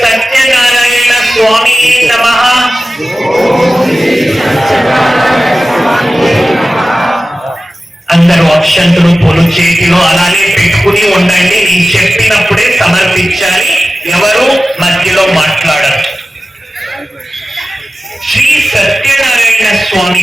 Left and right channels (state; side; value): normal; both; correlation 0.95